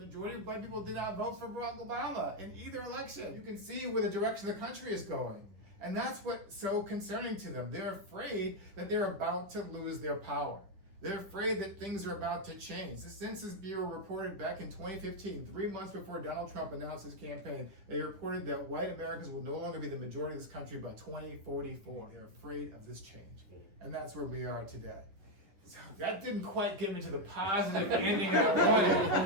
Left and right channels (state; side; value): late; left; 10 ms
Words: of white people did not vote for Barack Obama in either election. You can see where the direction the country is going. And that's what's so concerning to them. They're afraid that they're about to lose their power. They're afraid that things are about to change. The Census Bureau reported back in 2015, 3 months before Donald Trump announced his campaign, they reported that white Americans will no longer be the majority of this country by 2044. They're afraid of this change. And that's where we are today. So that didn't quite get me to the positive ending I